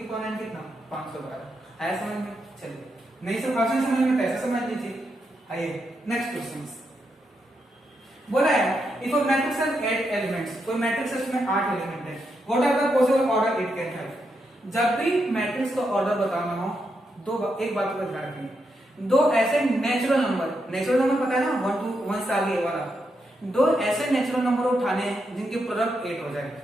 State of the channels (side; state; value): both; normal; correlation 0.83